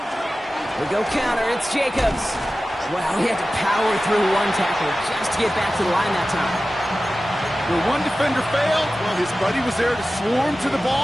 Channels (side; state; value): both; normal; correlation 0.95